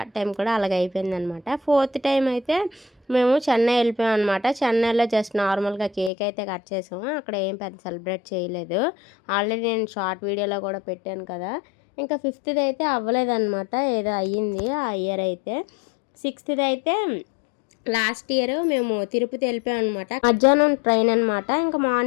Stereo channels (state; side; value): drops out; right; at 6.1 s